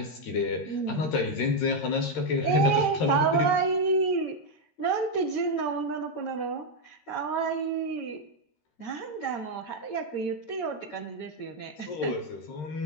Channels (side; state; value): right; late; 13 ms